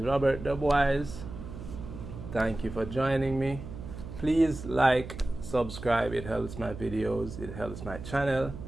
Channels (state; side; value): noise; right; hum, 11 dB below the sound